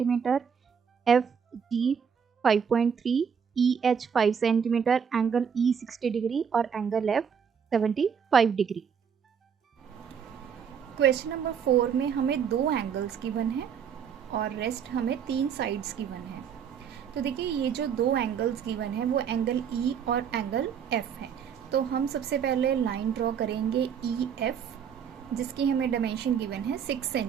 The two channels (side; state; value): left; quieter; 7.3 dB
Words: FG 5.3, EH 5 centimetre, angle E 60 degree और angle F 75 degree. Question number 4 में हमें 2 एंगल्स गिवन है और रेस्ट हमें 3 साइड्स गिवन है। तो देखिए, ये जो 2 एंगल्स गिवन है वो एंगल E और एंगल F है। तो हम सबसे पहले लाइन ड्रॉ करेंगे EF, जिसकी हमें डायमेंशन गिवन है 6